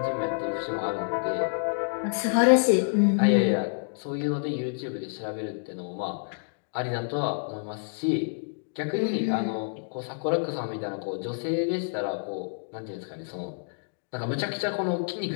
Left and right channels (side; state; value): right; silent; digital silence